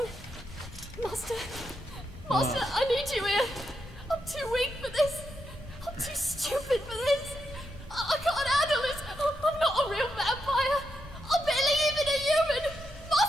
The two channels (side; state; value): both; normal; correlation 0.83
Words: Master, I need you here. I'm too weak for this. I'm too stupid for this. I can't handle this. I'm not a real vampire. I'm barely even a human.